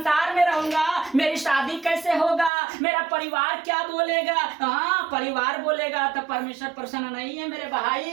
में रहूंगा, मेरी शादी कैसे होगा, मेरा परिवार क्या बोलेगा। हाँ, परिवार बोलेगा तो परमेश्वर प्रसन्न नहीं है मेरे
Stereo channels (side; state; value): left; drops out; at 2.5 s